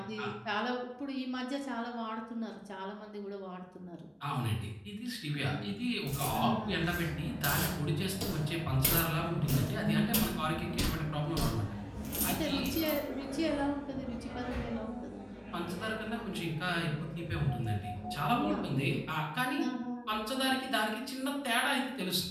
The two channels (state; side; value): identical; both; correlation 1.00